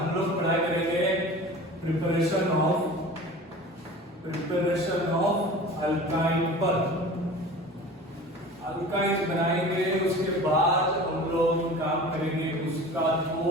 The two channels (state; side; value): normal; both; correlation 0.38